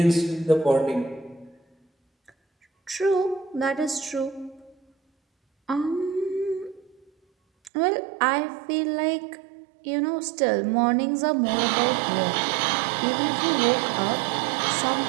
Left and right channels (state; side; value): drops out; left; at 7.7 s